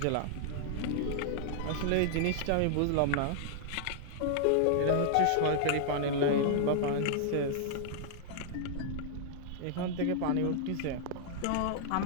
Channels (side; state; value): both; different; correlation -0.01